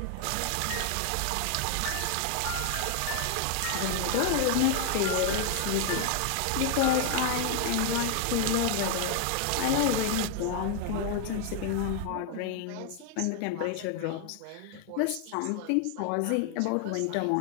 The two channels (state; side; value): different; both; correlation 0.00